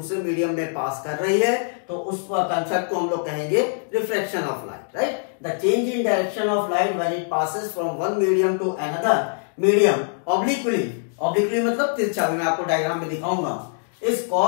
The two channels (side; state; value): right; silent; digital silence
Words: मीडियम में पास कर रही है तो उस कंसेप्ट को हम लोग कहेंगे refraction of light, right? The change in direction of light when it passes from one medium to another medium obliquely, obliquely मतलब तिरछा, मैं आपको डायग्राम में दिखाऊंगा, is